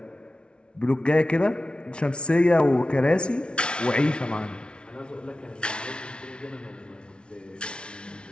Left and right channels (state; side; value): late; right; 0.057 ms